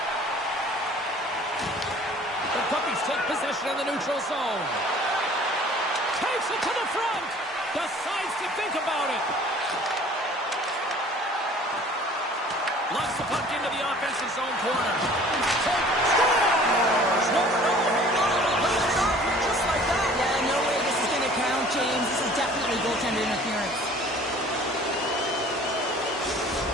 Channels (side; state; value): both; normal; correlation 0.50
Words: The Puppies take possession in the neutral zone. Takes it to the front. Decides to think about it. Loves the puck into the offensive zone corner. Scores! No, just like that. Yeah, no way this is going to count, James. This is definitely goaltender interference.